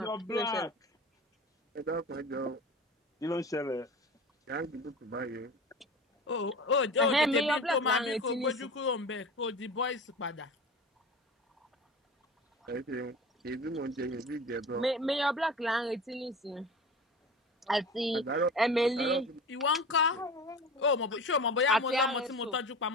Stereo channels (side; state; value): both; normal; correlation 0.34